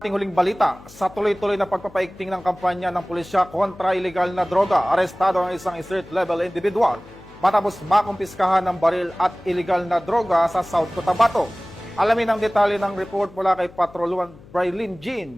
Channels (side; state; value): left; noise; hum, 22 dB below the sound